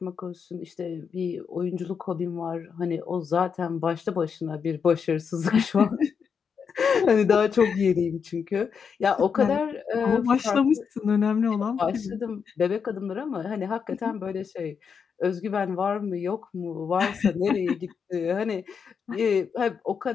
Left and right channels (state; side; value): quieter; right; 6.4 dB